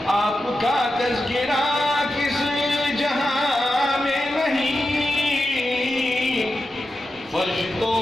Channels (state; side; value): normal; both; correlation 0.90